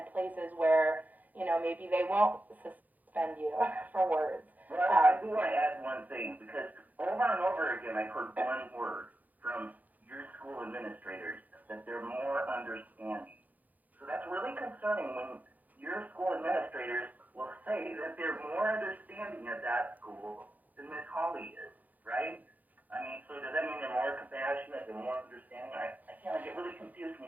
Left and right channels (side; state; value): left; late; 0.081 ms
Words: places where, maybe they won't suspend you for words. Well, I do want to add one thing, because over and over again, I've heard one word from your school administrators, that they're more understanding. So that's really concerning when your school administrators will say that they're more understanding at that school than Miss Hawley is, right? I mean, so does that mean they're more compassionate, they're more understanding? I get really confused